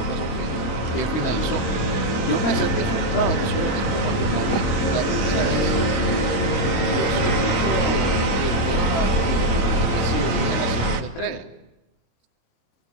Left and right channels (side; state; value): right; late; 26 ms